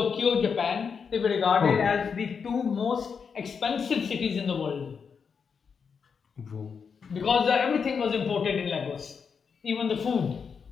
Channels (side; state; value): right; quieter; 6.1 dB